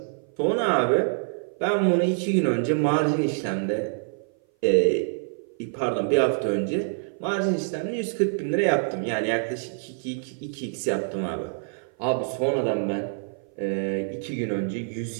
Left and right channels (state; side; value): silent; left; 57 dB below the other